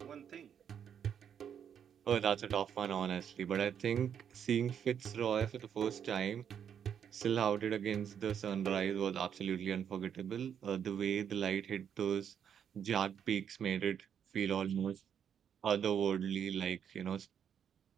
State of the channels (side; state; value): left; quieter; 8.3 dB